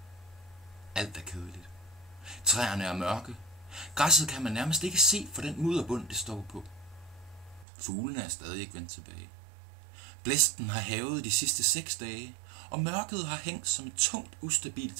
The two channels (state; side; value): drops out; left; at 7.7 s